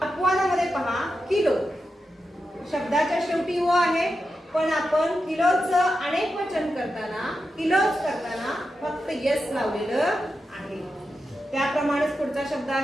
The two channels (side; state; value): both; normal; correlation 0.89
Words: अपवादामध्ये पहा किलो शब्दाच्या शेवटी ओ आहे पण आपण किलोचं अनेक वचन करताना किलोज करताना फक्त यस लावलेलं आहे। त्याप्रमाणेच पुढचा शब्द